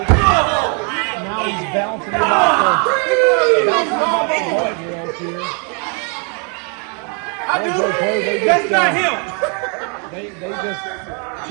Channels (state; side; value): quieter; left; 38.0 dB